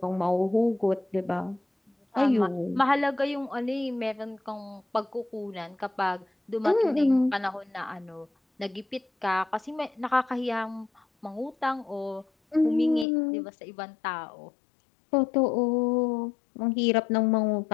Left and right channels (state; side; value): drops out; right; at 13.1 s